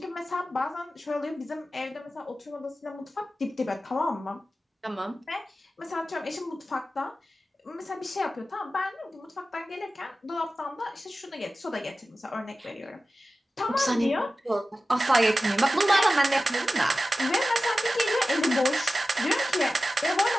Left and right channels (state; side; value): normal; both; correlation 0.94